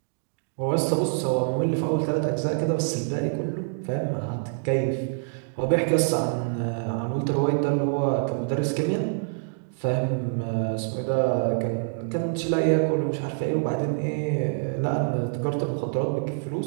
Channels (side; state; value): left; silent; digital silence